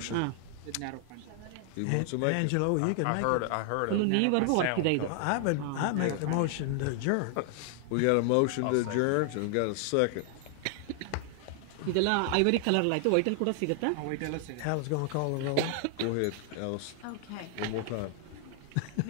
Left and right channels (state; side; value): different; both; correlation 0.00